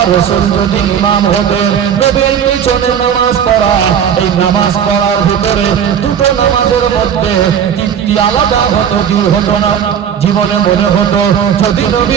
রাসূল যদি ইমাম হতেন, নবীর পিছনে নামাজ পড়া, এই নামাজ পড়ার ভিতরে দুটো নামাজের মধ্যে তৃপ্তি আলাদা হতো কি হতো না? জীবনে মনে হতো যদি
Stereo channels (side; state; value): left; quieter; 8.5 dB